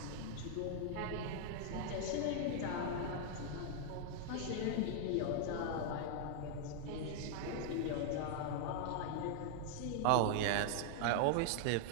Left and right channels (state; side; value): different; both; correlation 0.00